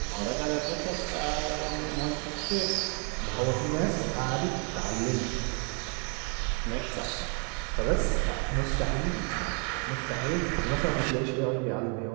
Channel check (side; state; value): left; quieter; 37.9 dB